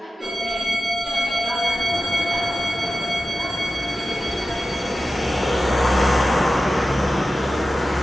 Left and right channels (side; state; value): both; normal; correlation 0.94